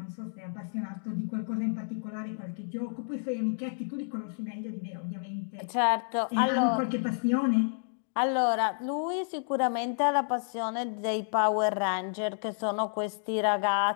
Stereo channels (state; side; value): silent; right; digital silence